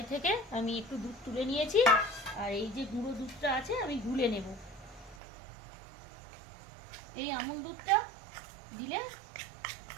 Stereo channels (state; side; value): drops out; left; at 5.2 s